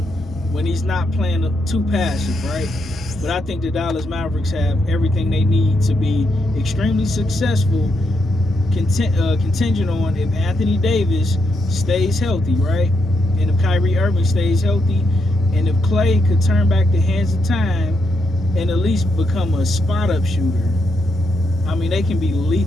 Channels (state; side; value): normal; both; correlation 0.80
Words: when he's not playing too passive, right? But I think the Dallas Mavericks have everything they need to be extremely successful, contingent on if Anthony Davis stays healthy, right? And if Kyrie Irving stays healthy, and if Klay could turn back the hands of time and at least become a spot-up shooter, I mean, they can be